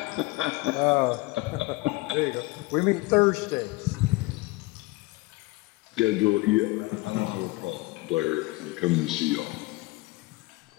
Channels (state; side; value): quieter; right; 22.3 dB